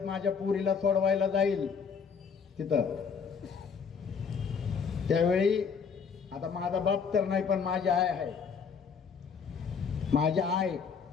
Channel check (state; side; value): quieter; right; 6.1 dB